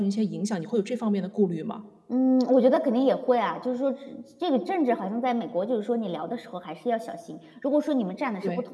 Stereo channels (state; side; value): identical; both; correlation 1.00